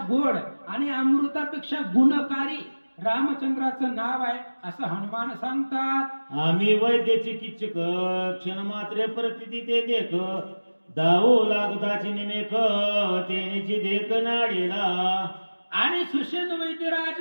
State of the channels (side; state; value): both; inverted; correlation -1.00